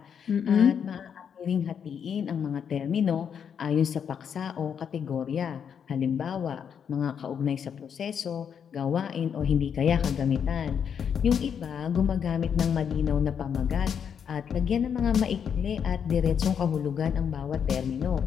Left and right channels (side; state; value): right; quieter; 7.6 dB